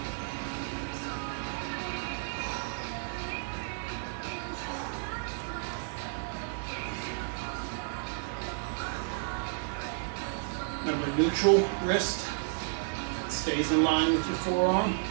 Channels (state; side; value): silent; left; digital silence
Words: Remember, neutral wrist stays in line with your forearm.